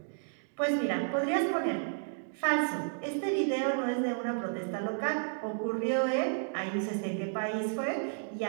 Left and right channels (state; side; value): silent; left; digital silence